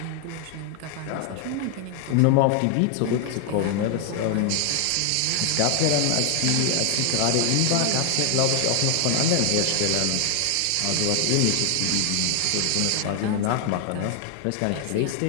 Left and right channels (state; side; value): different; both; correlation 0.00